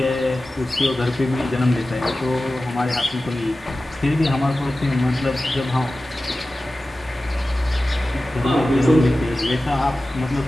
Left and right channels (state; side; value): normal; both; correlation 0.95